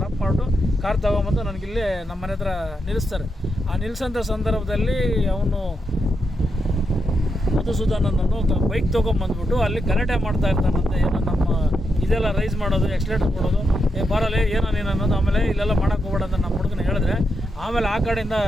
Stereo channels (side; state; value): both; normal; correlation 0.83